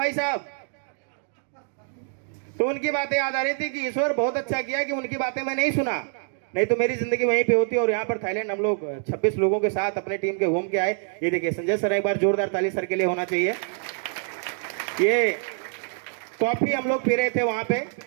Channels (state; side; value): silent; left; 61 dB below the other